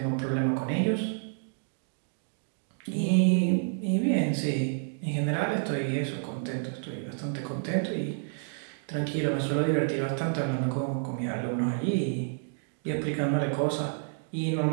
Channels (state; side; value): silent; left; digital silence